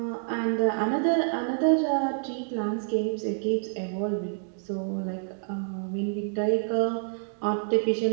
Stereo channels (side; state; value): left; silent; digital silence